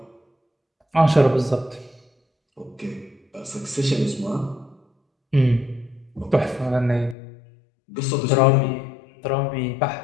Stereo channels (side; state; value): right; drops out; at 7.2 s